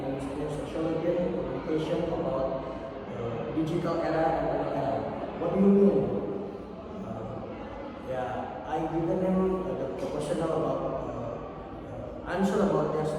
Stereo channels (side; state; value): both; identical; correlation 1.00